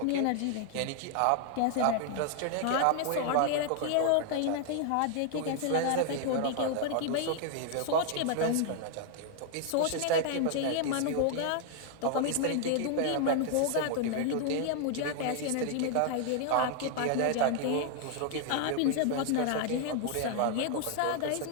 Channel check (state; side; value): different; both; correlation 0.00